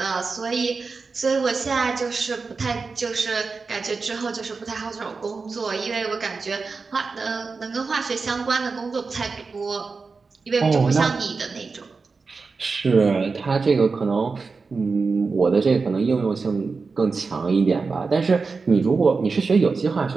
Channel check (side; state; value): left; quieter; 4.5 dB